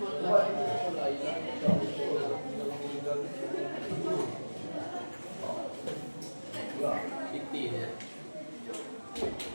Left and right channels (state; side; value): inverted; both; correlation -1.00